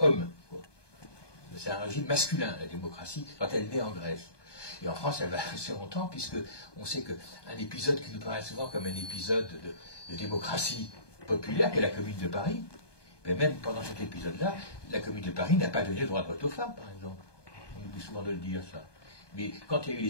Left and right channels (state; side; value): late; right; 1.2 ms